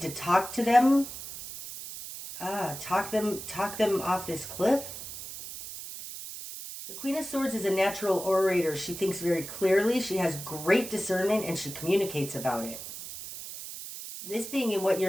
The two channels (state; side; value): noise; right; hiss, 10 dB below the sound